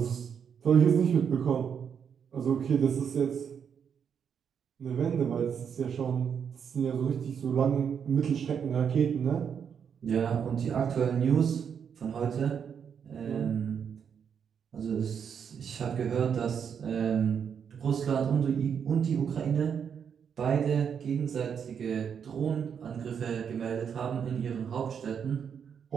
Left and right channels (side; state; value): left; quieter; 7.4 dB